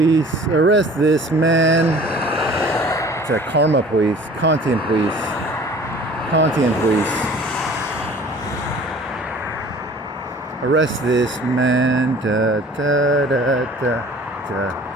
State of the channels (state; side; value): normal; both; correlation 0.48